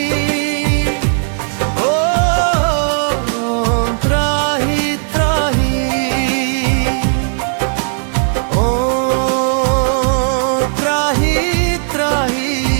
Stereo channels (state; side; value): silent; left; digital silence